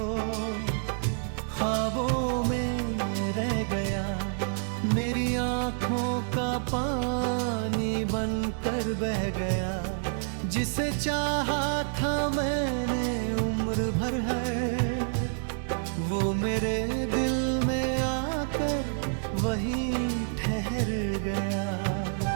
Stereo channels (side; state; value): left; silent; digital silence